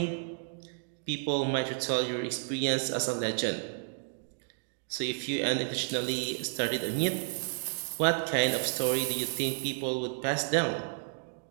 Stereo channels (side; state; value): left; silent; digital silence